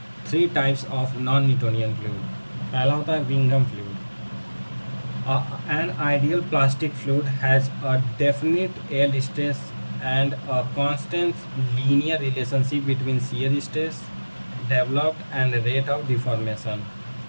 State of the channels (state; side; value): inverted; both; correlation -1.00